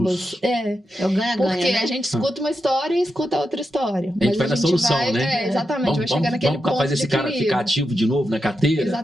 É. É o ganha-ganha, Porque né? a gente escuta uma história e escuta outra história. A gente vai na solução, vai, né? Exatamente, vai chegar naquele ponto fazer de esse cara equilíbrio. ficar ativo de novo na carteira?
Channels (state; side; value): normal; both; correlation 0.87